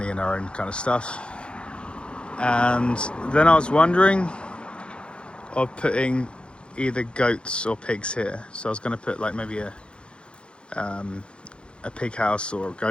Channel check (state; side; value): late; right; 0.056 ms